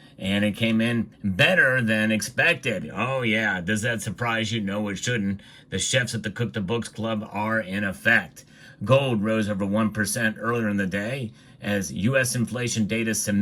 and it came in better than expected. Oh yeah, does that surprise you? No, it shouldn't. The chefs at the Cook the Books Club are in effect. Gold rose over 1% earlier in the day as U.S. inflation data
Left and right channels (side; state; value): both; identical; correlation 1.00